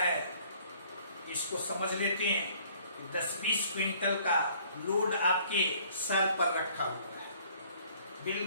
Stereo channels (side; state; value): both; inverted; correlation -0.58